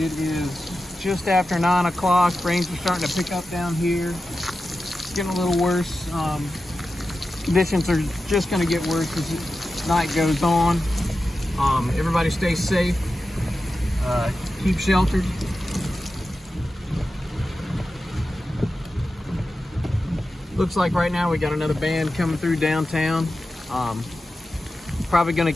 is just after 9 o'clock. Rains are starting to pick up down here. It's getting a little worse. Conditions are just going to get worse as the night goes on. Everybody stay safe. Keep sheltered. Looks like right now we got another band coming through downtown. Probably going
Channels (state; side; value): normal; both; correlation 0.92